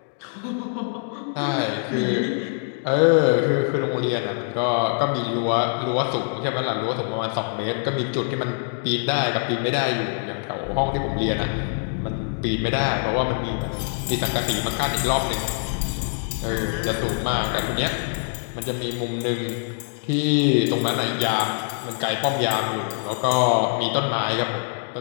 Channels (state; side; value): silent; right; 63 dB below the other